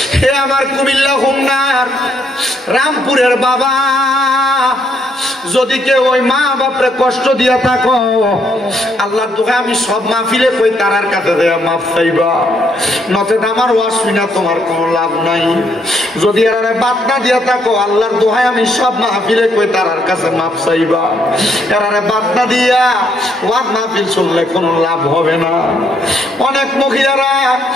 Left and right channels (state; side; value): normal; both; correlation 0.72